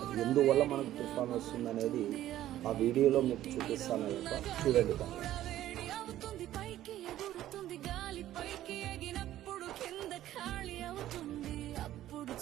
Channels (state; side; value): quieter; left; 13.3 dB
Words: ఎందువల్ల మనకు తుఫాన్ వస్తుంది అనేది ఆ వీడియోలో మీకు చూపిస్తాను అయ్యప్ప. చూడండి బాగా.